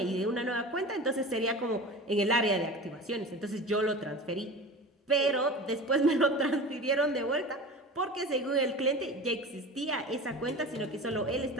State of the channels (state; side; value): normal; both; correlation 0.34